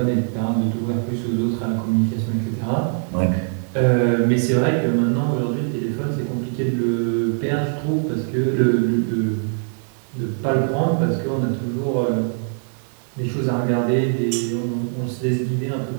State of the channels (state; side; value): silent; left; digital silence